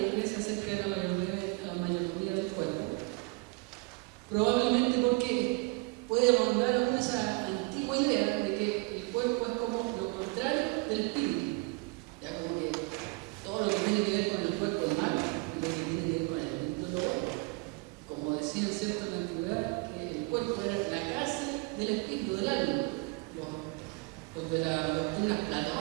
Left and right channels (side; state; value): left; quieter; 27.2 dB